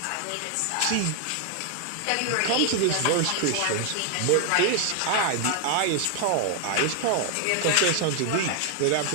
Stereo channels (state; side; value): different; both; correlation 0.00